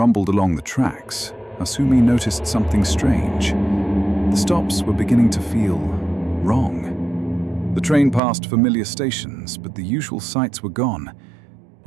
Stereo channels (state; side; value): drops out; left; at 8.2 s